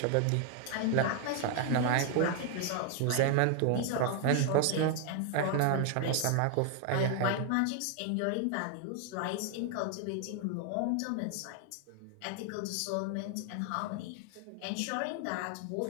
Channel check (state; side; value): different; both; correlation 0.00